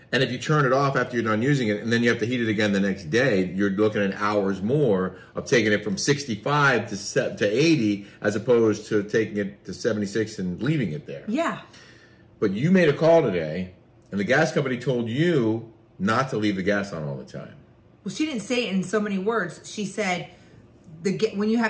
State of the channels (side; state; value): both; identical; correlation 1.00